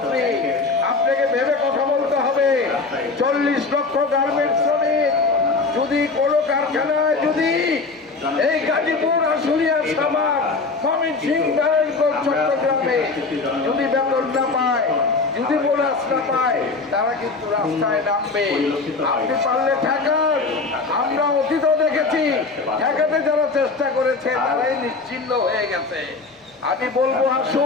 আপনাকে ভেবে কথা বলতে হবে। 40 লক্ষ গার্মেন্টস শ্রমিক যদি কোনো কারখানায় যদি এই গাজীপুর, আশুলিয়া, সাভার, ময়মনসিংহ, নারায়ণগঞ্জ, চট্টগ্রামে যদি বেতন না পায়, যদি বোনাস না পায়, তারা কিন্তু রাস্তায় নামবে। আপনি পারলে ঠেকান। আমরা অতীতও দেখেছি ঠেকাতে যারা চেষ্টা করেছে তারাই নিশ্চিহ্ন হয়ে গেছে। আমি বলবো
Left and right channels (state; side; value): quieter; right; 4.0 dB